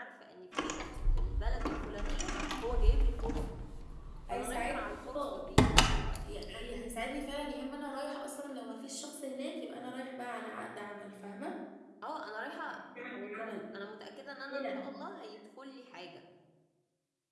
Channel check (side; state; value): both; identical; correlation 1.00